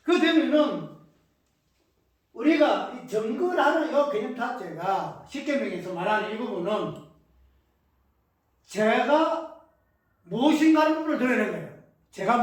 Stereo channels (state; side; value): identical; both; correlation 1.00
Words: 그 되면은 우리가 이 증거라는 이 개념 자체가 십계명에서 말하는 이 부분은 죄가 무엇인가 하는 부분을 드러내는 거예요. 죄가